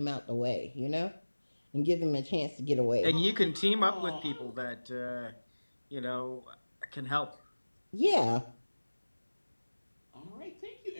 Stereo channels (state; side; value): inverted; both; correlation -1.00